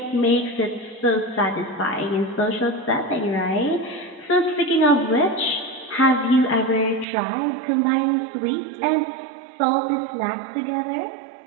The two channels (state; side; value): drops out; left; at 7.1 s